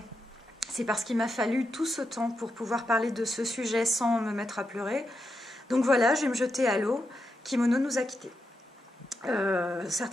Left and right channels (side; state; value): both; normal; correlation 0.86